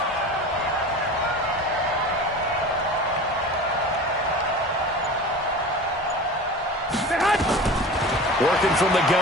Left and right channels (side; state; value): both; normal; correlation 0.35